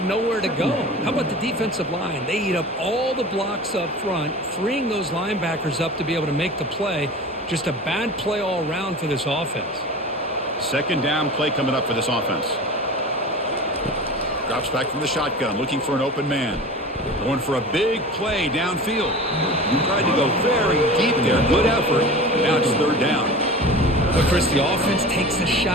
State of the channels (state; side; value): normal; both; correlation 0.35